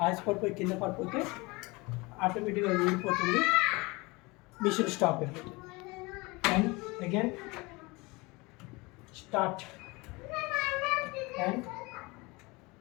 ఆయాసపడిపోయి కింద పడిపోతే ఆటోమేటిక్గా ఊడిపోతుంది, మిషన్ స్టాప్ అయిపోతుంది. And again start and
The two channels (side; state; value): right; quieter; 24.6 dB